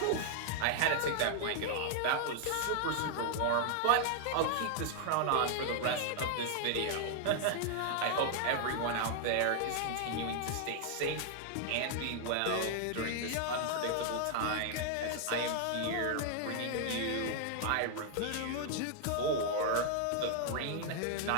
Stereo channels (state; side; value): different; both; correlation 0.00